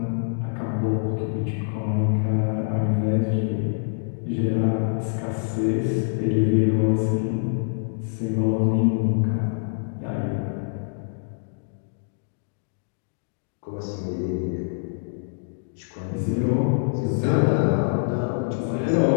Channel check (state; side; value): silent; right; digital silence